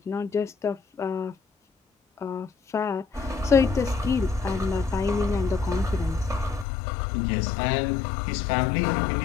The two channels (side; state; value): right; drops out; at 6.7 s